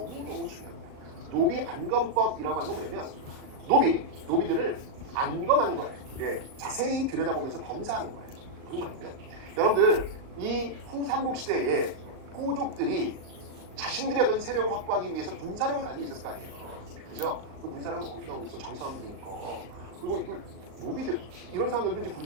중요합니다. 노비 안건법이라고 하는 건 뭐냐면 노비들을 안검하는 거예요. 자세히 들여다보면서 검사하는 거예요. 무슨 말이냐면 여러분들 이 후삼국 시대에 호족들이 자신들의 어떤 세력을 확보하기 위해서 군사력을 가지고 있었을 거 아니에요. 그죠? 그 군사력은 어디서 나오고 있어? 장사람도 있고. 그리고 노비들 이런 사람들도 이제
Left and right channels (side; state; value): left; late; 38 ms